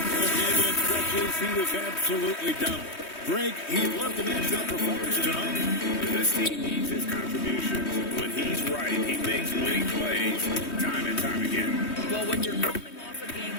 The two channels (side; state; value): right; late; 3.2 ms